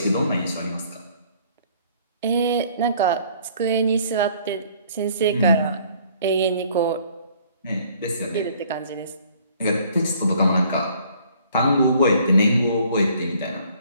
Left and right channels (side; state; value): both; inverted; correlation -0.58